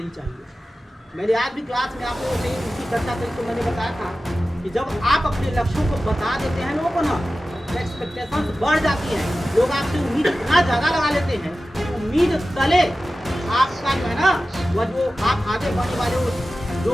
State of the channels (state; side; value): normal; both; correlation 0.95